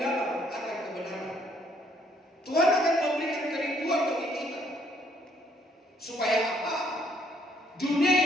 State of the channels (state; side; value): normal; both; correlation 0.67